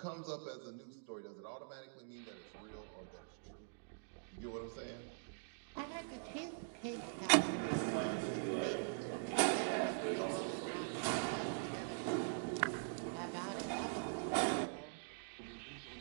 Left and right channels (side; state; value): left; silent; digital silence